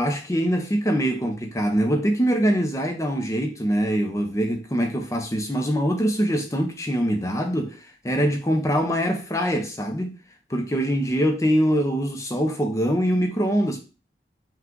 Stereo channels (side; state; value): both; normal; correlation 0.82